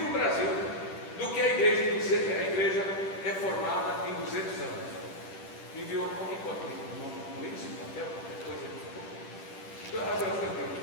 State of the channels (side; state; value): right; late; 10 ms